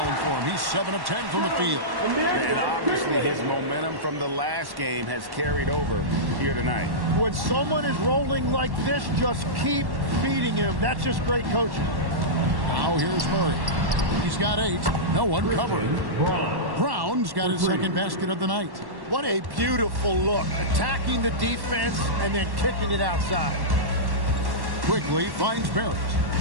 for him. He's 7 of 10 from the field. And obviously his momentum from the last game has carried over here tonight. When someone is rolling like this, just keep feeding him. That's just great coaching. Now here's Murray. He's got 8. No one covering. Brown's got his second basket of the night. What a beautiful look. Attacking the defense and then kicking it outside. Quickly finds Barrett.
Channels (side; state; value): left; late; 1.1 ms